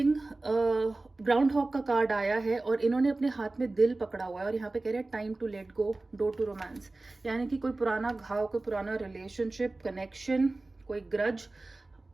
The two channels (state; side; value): quieter; left; 3.1 dB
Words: हॉक का कार्ड आया है और इन्होंने अपने हाथ में दिल पकड़ा हुआ है और यहाँ पे कह रहे हैं time to let go, door to romance. यानी कि कोई पुराना घाव, कोई पुराना रिलेशनशिप, कनेक्शन, कोई ग्रज,